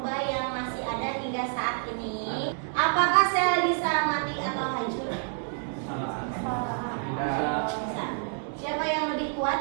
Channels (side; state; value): left; silent; 57 dB below the other